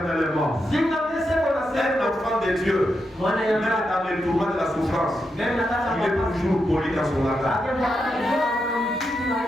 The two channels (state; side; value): normal; both; correlation 0.85